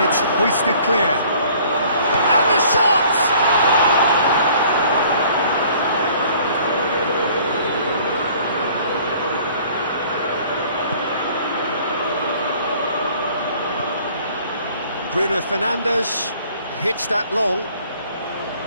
it's hoisted clear. And the shot! Bruno Fernandes hits that long,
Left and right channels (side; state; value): both; inverted; correlation -0.54